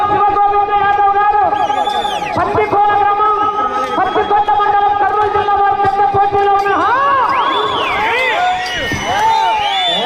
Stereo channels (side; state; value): both; identical; correlation 1.00